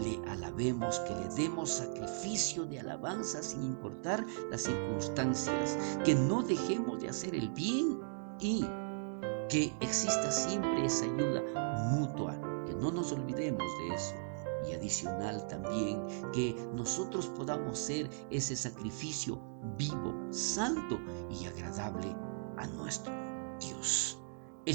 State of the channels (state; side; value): silent; left; digital silence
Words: le alabemos, que le demos sacrificio de alabanza sin importar las circunstancias, que no dejemos de hacer el bien y que exista siempre esa ayuda mutua, que no nos olvidemos de eso. Y adicional también que nosotros podamos ser ese sacrificio vivo, santo y agradable a nuestro Dios. El